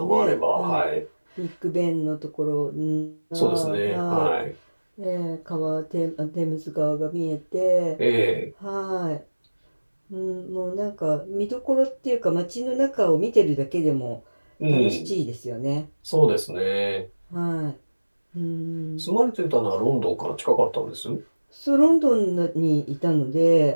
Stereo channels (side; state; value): both; inverted; correlation -1.00